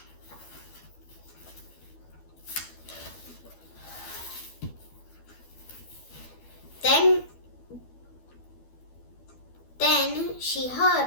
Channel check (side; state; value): right; late; 12 ms